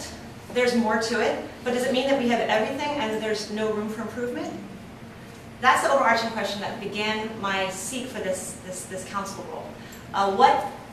There's more to it. But does it mean that we have everything and there's no room for improvement? That's the overarching question that began my seek for this council role. What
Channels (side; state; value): both; identical; correlation 1.00